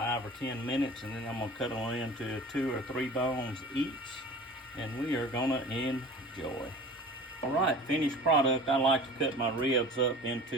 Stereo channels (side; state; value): both; normal; correlation 0.40